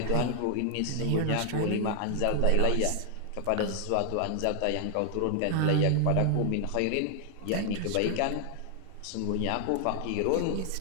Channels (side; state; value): both; different; correlation 0.00